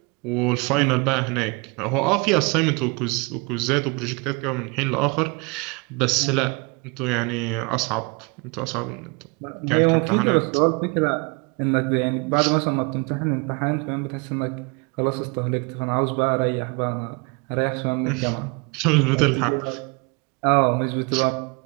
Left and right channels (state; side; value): quieter; left; 30.0 dB